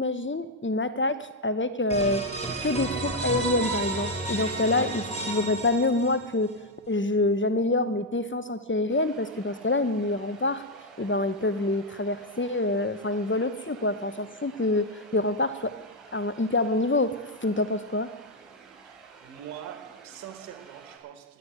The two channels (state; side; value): normal; both; correlation 0.02